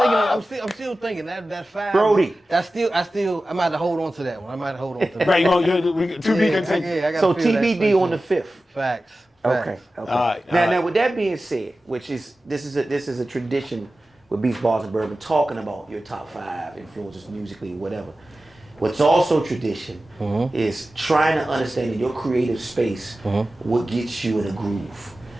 to think. I'm still thinking that 5. Brody. That's still. I might have to hold on to that one. I might have to hold on to that. Right, to be continued. Yeah, I gotta So feel that TBD space. on the 5th. Facts. Okay. All right, Now, with that being said, which is this is a tradition with Beats, Bars, and Bourbon, talking about your top 5 influences musically, whatever. What's also tradition is trying to understand in your creative space what gets you in a groove.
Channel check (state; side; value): normal; both; correlation 0.95